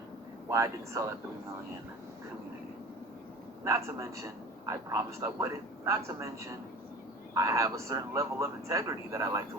why I didn't sell at 3 million, community. Not to mention, I promised I wouldn't. Not to mention, I have a certain level of integrity that I like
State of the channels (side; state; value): both; normal; correlation 0.38